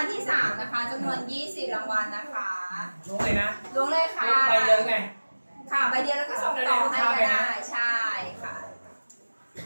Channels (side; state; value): both; inverted; correlation -1.00